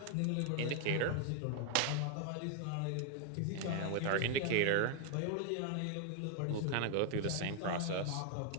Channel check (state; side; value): different; both; correlation 0.00